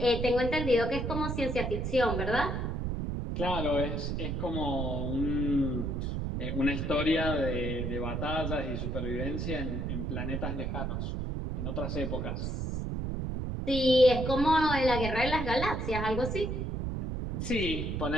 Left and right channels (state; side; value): noise; right; rumble, 2 dB below the sound